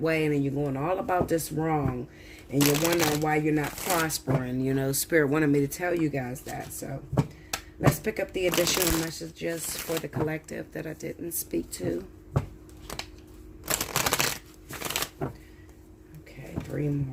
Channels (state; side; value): identical; both; correlation 1.00